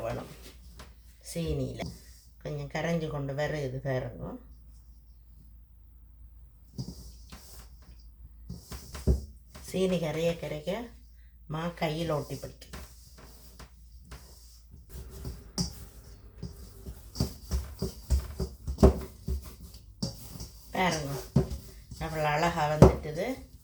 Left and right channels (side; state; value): both; identical; correlation 1.00